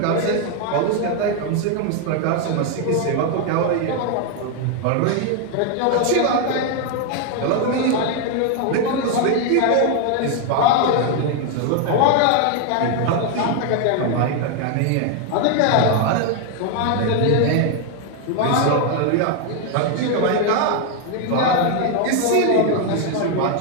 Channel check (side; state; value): both; different; correlation 0.01